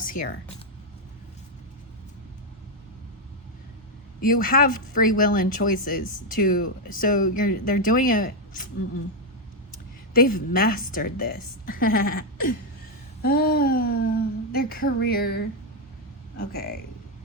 here. You have free will and choices to, so they're doing it. They've mastered this. Their career. Okay.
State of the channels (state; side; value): normal; both; correlation 0.03